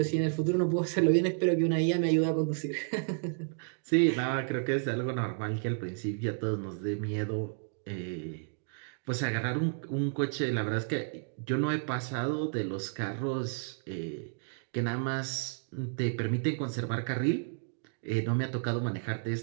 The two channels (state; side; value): silent; left; digital silence